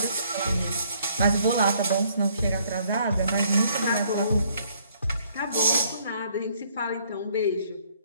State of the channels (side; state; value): both; inverted; correlation -0.65